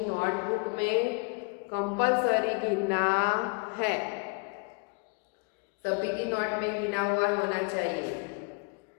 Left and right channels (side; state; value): right; quieter; 31.7 dB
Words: नोटबुक में कंपल्सरी गिनना है, सभी की नोट में गिना हुआ होना चाहिए।